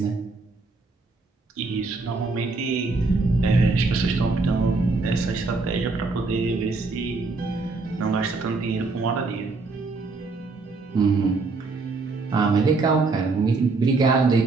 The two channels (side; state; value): left; quieter; 3.8 dB